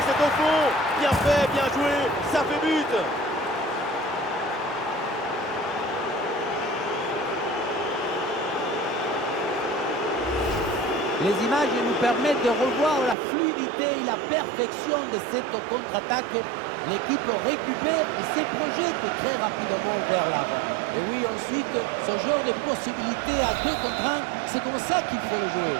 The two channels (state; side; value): drops out; left; at 13.2 s